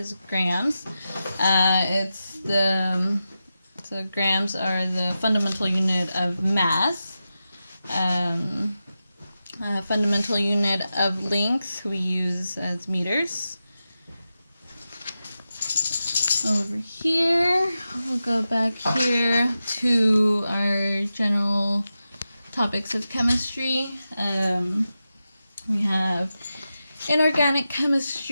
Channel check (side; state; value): both; inverted; correlation -0.91